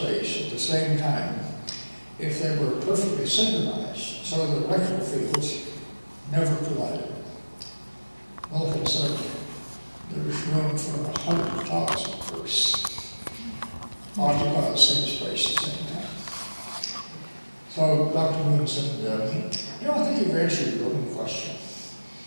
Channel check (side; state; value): both; inverted; correlation -1.00